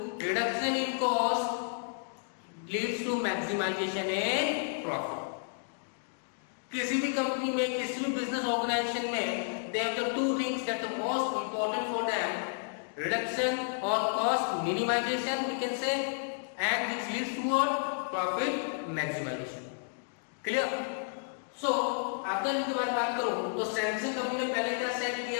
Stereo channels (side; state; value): right; silent; digital silence